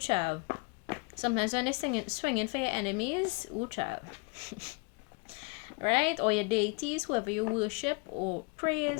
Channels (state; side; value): quieter; right; 30.6 dB